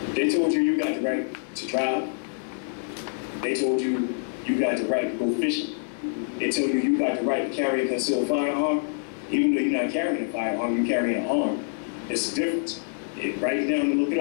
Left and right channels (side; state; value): right; silent; 61 dB below the other